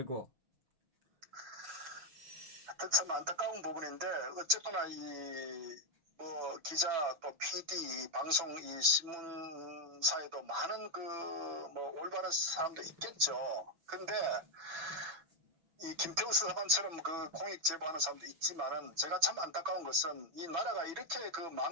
하여튼 참 안타까운 부분인데 어쨌거나 뭐 기자 또 PD 방송 이 신문사에도 많은 뭐 올바른 사람도 있겠죠. 근데 이 김태우 사관처럼 그 공익 제보하는 사람도 있지만은 제가 참 안타까운 것은 이 나라가 이렇게 그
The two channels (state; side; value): late; left; 6.0 ms